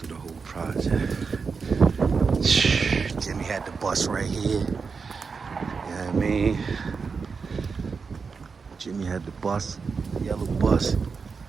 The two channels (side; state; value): left; quieter; 5.2 dB